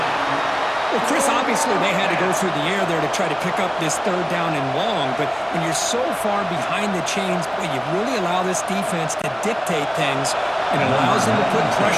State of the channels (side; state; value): both; identical; correlation 1.00